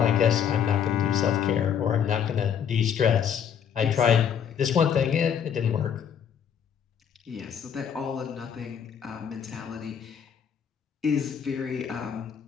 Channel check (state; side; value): quieter; right; 8.0 dB